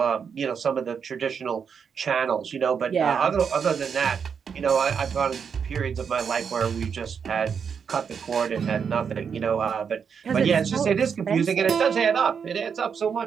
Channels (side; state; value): left; quieter; 6.7 dB